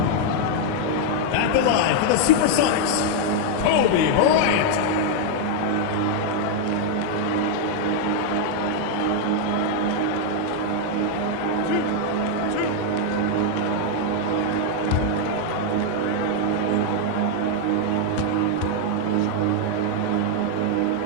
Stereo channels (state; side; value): different; both; correlation 0.00